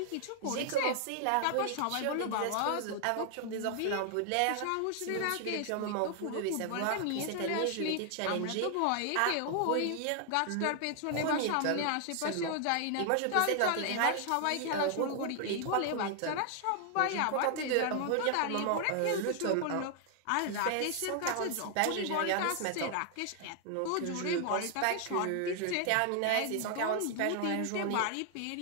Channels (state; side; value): different; both; correlation 0.00